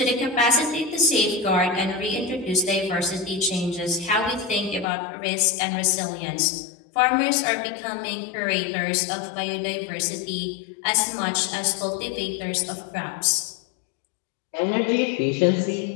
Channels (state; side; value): drops out; right; at 4.9 s